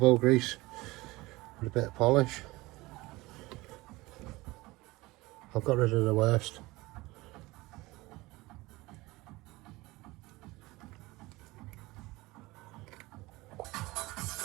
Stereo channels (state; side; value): quieter; left; 21.0 dB